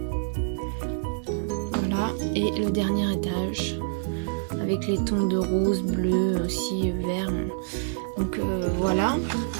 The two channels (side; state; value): left; silent; digital silence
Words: Voilà. Et le dernier étage avec les tons de rose, bleu, aussi vert. Donc voilà.